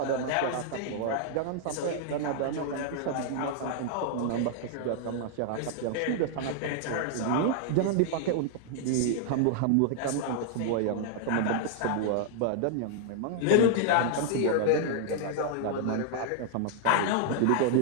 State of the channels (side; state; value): both; different; correlation -0.01